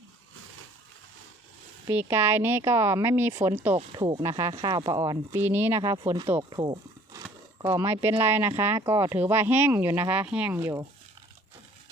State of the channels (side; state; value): both; normal; correlation 0.55